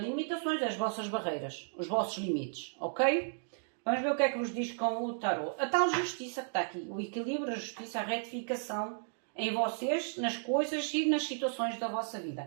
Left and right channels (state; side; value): silent; left; digital silence